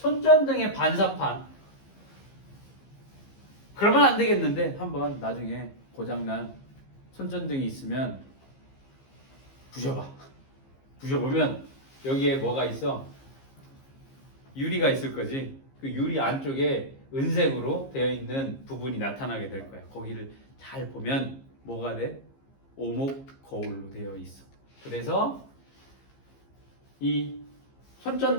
반사판. 그러면 안 되겠는데 한번 나중에 고장난 손전등이 있으면 부셔봐. 부셔보면 여기에 뭐가 있어? 유리가 있을 거지. 그 유리 안쪽에 은색으로 되어 있는 부분이 나타나게 될 거야. 거기를 잘 보면 뭐가 돼? 오목 거울로 되어 있어. 그래서 이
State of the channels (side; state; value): right; late; 15 ms